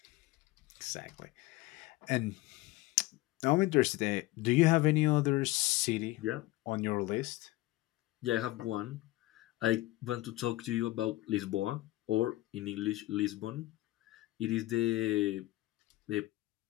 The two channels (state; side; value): quieter; right; 18.4 dB